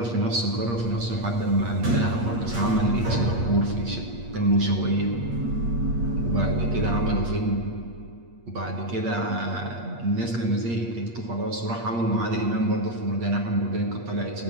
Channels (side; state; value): left; late; 8.5 ms